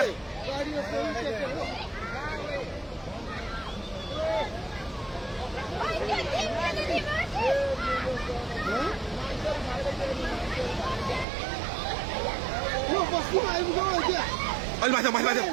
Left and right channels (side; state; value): left; drops out; at 11.2 s